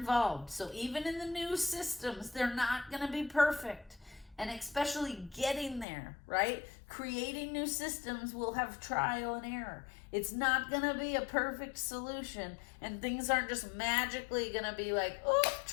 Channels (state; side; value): drops out; right; at 5.9 s